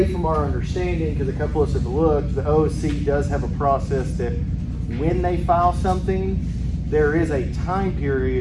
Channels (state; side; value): identical; both; correlation 1.00